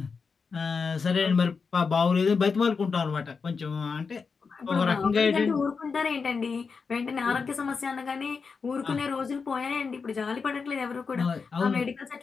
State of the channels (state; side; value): quieter; right; 5.2 dB